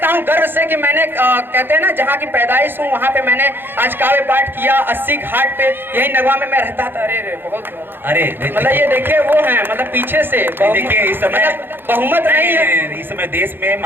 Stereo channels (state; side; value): late; left; 0.10 ms